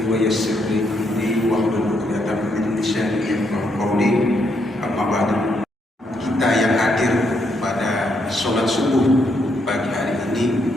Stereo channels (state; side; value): normal; both; correlation 0.76